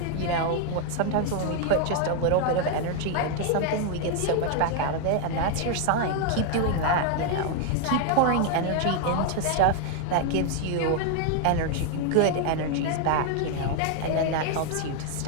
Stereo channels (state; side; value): different; both; correlation 0.00